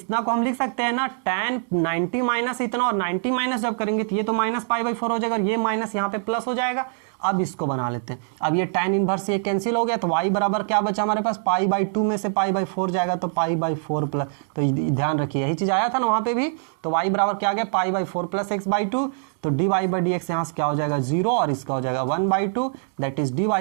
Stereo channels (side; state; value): left; silent; digital silence